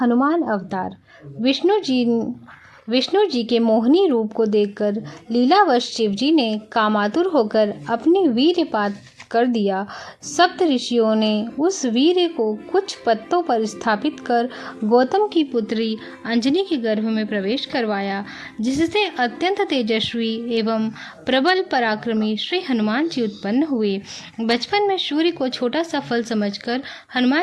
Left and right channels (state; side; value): identical; both; correlation 1.00